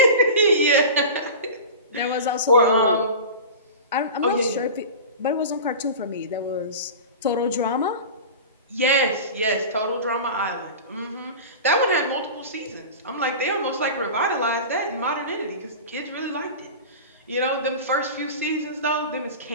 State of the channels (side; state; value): both; inverted; correlation -0.32